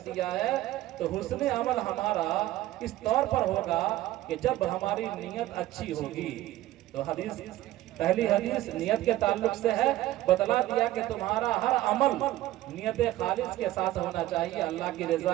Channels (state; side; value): quieter; left; 15.5 dB